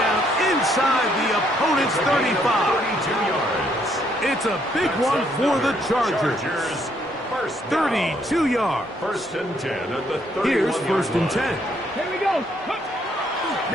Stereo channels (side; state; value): both; normal; correlation 0.70